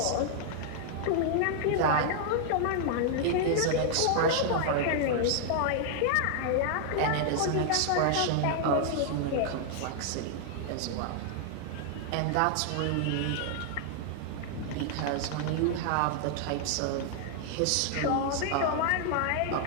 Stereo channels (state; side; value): different; both; correlation -0.01